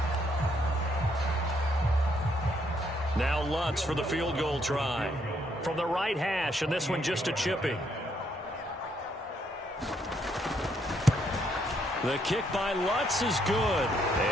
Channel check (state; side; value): normal; both; correlation 0.73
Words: Now Lutz for the field goal try. From the right hash, and this one just a chipping. The kick by Lutz is good,